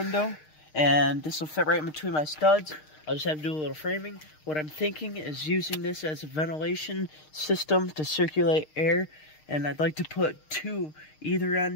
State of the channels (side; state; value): right; late; 6.5 ms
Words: and this will fit right in between my studs. I'll just have to do a little framing. What I'm thinking is using this as a ventilation system to circulate air, and I'd like to put 2 either